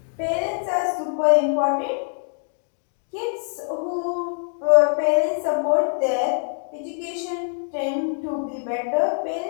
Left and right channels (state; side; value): silent; right; digital silence